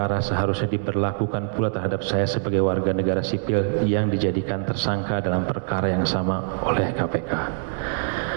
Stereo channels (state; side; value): silent; left; 63 dB below the other